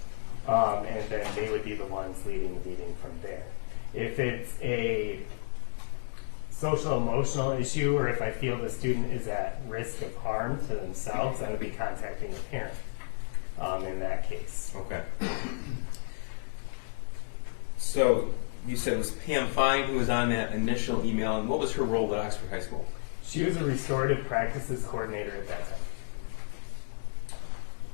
And then they would be the ones leading the meeting from there. If it's a social emotional issue, or if I feel the student is at risk of harm to themselves, I would be contacting a parent in that case. Okay. So you said it was Pam Fine who was on that initial email, and what was her role at Oxford High School? She was a restorative practices coordinator at that time.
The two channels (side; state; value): right; silent; digital silence